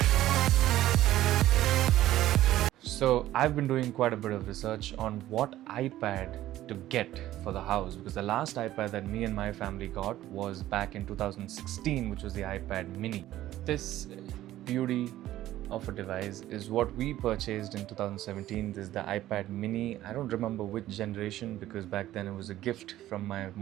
So I've been doing quite a bit of research on what iPad to get for the house because the last iPad that me and my family got was back in 2016, which was the iPad mini. This beauty of a device is what we purchased in 2017. This is the iPad mini. I don't remember which generation because back then it was a gift from my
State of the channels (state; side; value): quieter; left; 14.2 dB